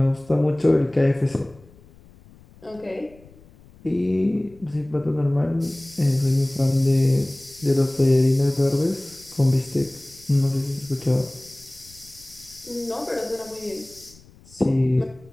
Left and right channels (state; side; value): noise; left; rumble, 25 dB below the sound